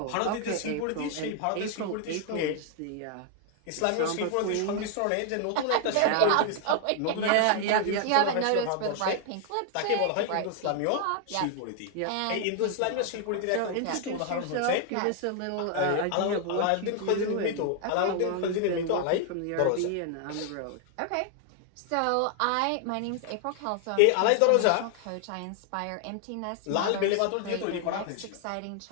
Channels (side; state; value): both; different; correlation 0.00